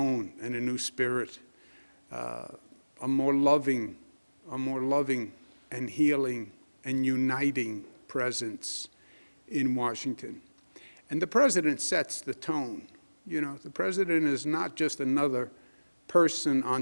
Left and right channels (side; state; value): both; inverted; correlation -1.00